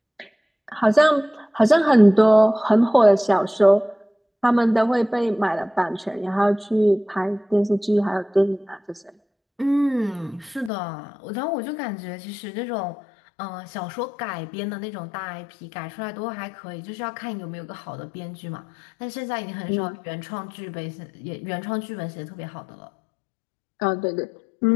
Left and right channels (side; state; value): right; drops out; at 10.7 s